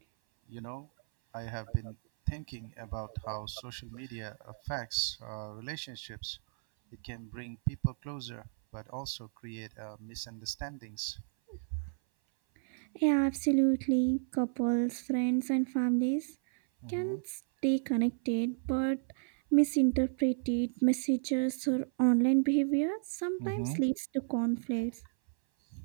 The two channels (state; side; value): silent; left; 56 dB below the other